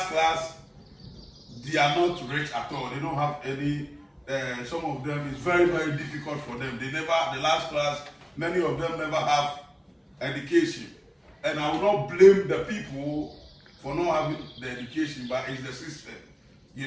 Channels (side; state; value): both; identical; correlation 1.00